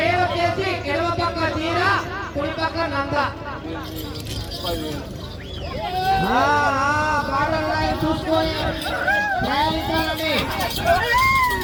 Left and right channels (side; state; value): both; identical; correlation 1.00